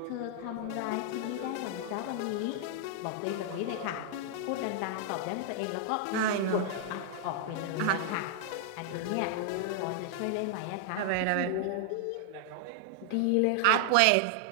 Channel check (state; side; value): different; both; correlation -0.01